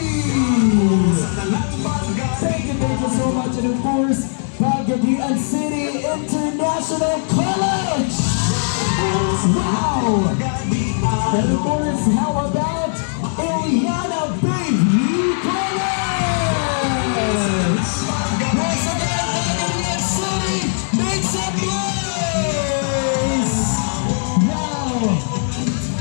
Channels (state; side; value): silent; right; 62 dB below the other